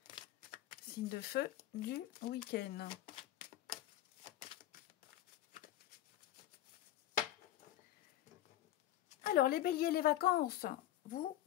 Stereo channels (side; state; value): right; quieter; 13.2 dB